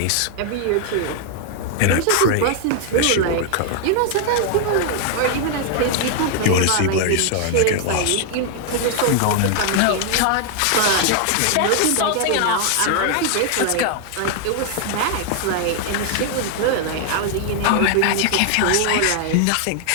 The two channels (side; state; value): both; different; correlation 0.00